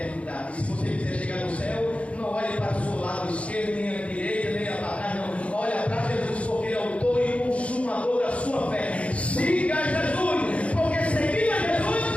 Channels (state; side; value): late; right; 0.063 ms